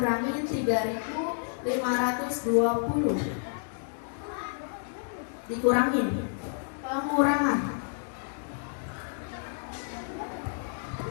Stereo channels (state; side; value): silent; right; digital silence